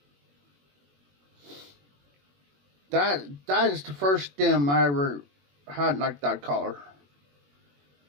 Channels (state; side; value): late; left; 21 ms